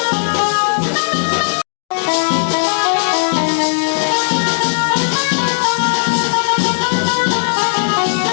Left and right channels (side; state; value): right; silent; digital silence